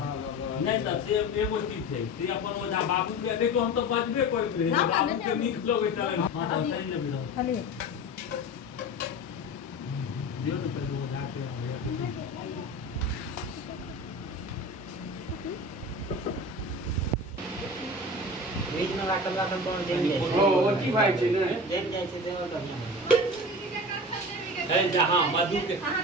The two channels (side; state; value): both; normal; correlation 0.32